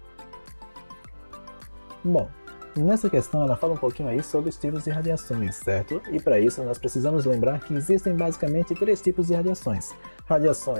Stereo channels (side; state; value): both; inverted; correlation -1.00